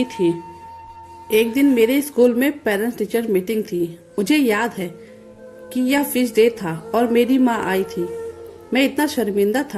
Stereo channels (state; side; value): identical; both; correlation 1.00